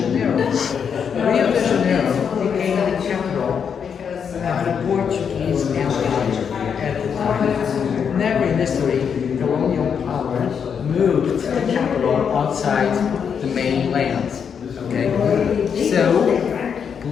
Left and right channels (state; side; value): quieter; right; 7.1 dB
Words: Rio de Janeiro became the capital of the Portuguese Empire at the time. Never in history, colonial power moved the capital outside the mainland. Okay? So,